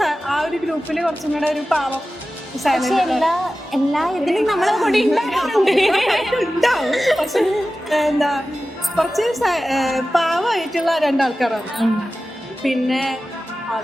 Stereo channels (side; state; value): both; normal; correlation 0.95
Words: ആ ഒരു ഗ്രൂപ്പിൽ കുറച്ചും കൂടെ ഒരു പാവം എല്ലാ ഇതിലും നമ്മളെ കൂടി ഉണ്ടാവും. പക്ഷെ എന്താ കുറച്ച് പാവമായിട്ടുള്ള 2 ആൾക്കാരാണ്. പിന്നെ